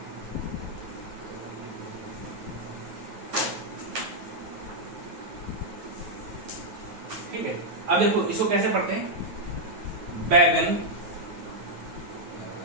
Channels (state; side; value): late; left; 9.3 ms